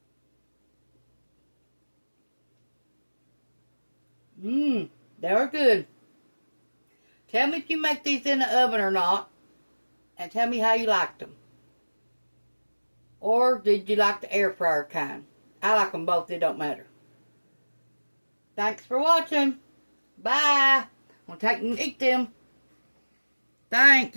They're good. Tell me if you make these in the oven or not, and tell me how you liked them. Or did you like the air fryer kind? I like them both, it don't matter. Thanks for watching. Bye. I'm going to take and eat them.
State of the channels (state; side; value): inverted; both; correlation -1.00